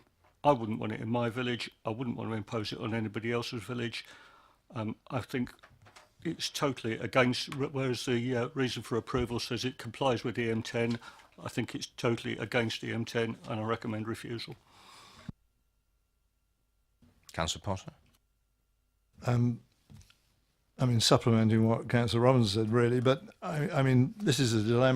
wouldn't want it in my village. I wouldn't want to impose it on anybody else's village. I think it's totally against, whereas the reason for approval says it complies with EM10, I think it's totally against EM10, and I recommend refusal. Councillor Potter. I mean, supplementing what Councillor Robinson said, really, but I mean, this is a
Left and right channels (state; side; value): identical; both; correlation 1.00